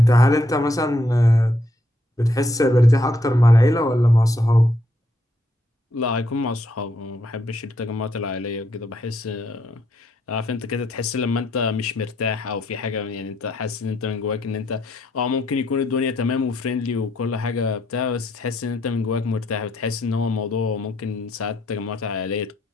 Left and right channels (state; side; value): normal; both; correlation 0.74